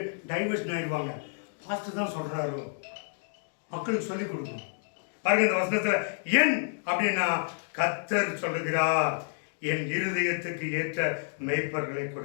டைவர்ஷன் ஆயிடுவாங்க. பாஸ்டர் தான் சொல்றாரு, மக்களுக்கு சொல்லிக் கொடுக்கணும். பாருங்க இந்த வசனத்துல என் அப்படின்னா கர்த்தர் சொல்லுகிறார், என் இருதயத்துக்கு ஏற்ற மெய்ப்பர்களை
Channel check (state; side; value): silent; right; digital silence